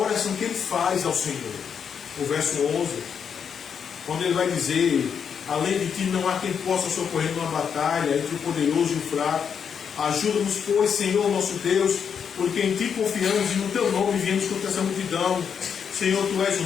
que ele faz ao Senhor. O verso 11, quando ele vai dizer, além de ti não há quem possa socorrer numa batalha entre o poderoso e o fraco. Ajuda-nos, pois, Senhor nosso Deus, porque em ti confiamos e no teu nome viemos contra essa multidão. Senhor, tu és o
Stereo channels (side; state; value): right; quieter; 7.2 dB